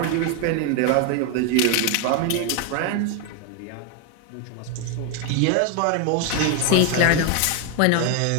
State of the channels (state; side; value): different; both; correlation 0.01